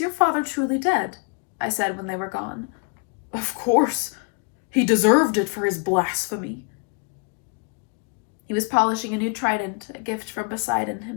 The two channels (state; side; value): quieter; right; 35.3 dB